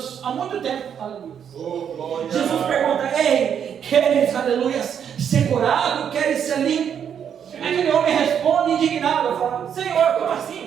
há muito tempo. Aleluia. Jesus pergunta: ei, queres, aleluia, ser curado? Queres ser limpo? Aquele homem responde indignado, fala: Senhor, como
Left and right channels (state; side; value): quieter; left; 8.3 dB